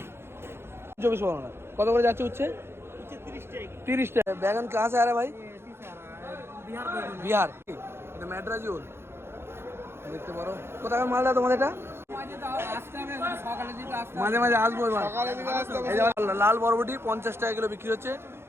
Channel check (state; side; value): late; left; 0.12 ms